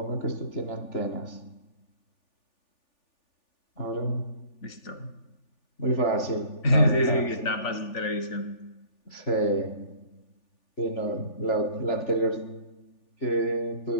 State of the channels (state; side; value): late; right; 3.4 ms